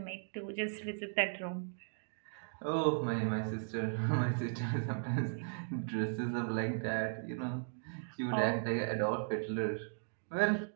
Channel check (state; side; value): silent; left; digital silence